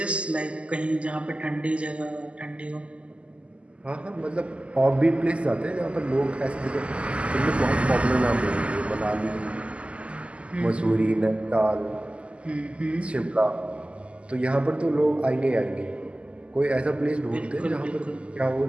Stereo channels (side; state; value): left; late; 0.057 ms